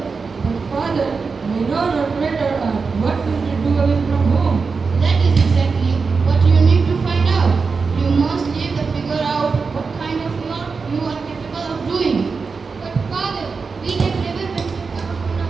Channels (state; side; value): quieter; left; 4.8 dB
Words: But father, we know not better art. What will we do away from home? That is exactly what you need to find out. You must live to figure out what kind of work you are capable of doing. But father, we have never ventured out on